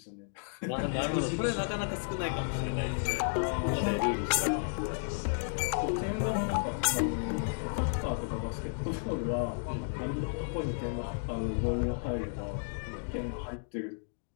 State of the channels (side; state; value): right; silent; digital silence